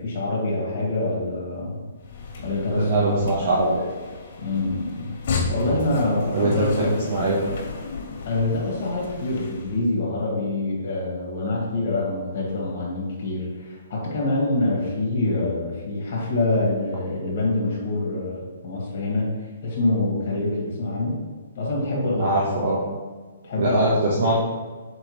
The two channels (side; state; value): both; inverted; correlation -0.58